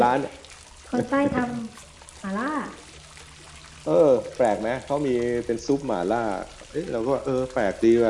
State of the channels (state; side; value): identical; both; correlation 1.00